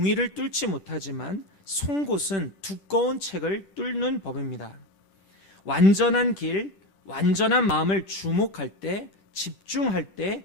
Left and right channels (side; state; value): right; late; 10 ms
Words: 뚫지 못하지만 송곳은 두꺼운 책을 뚫는 법입니다. 완전한 길, 완전한 마음을 주목할 때, 집중할 때